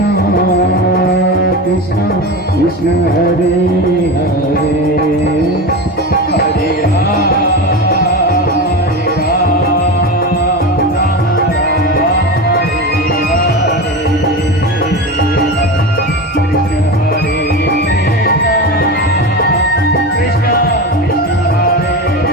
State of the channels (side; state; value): both; normal; correlation 0.24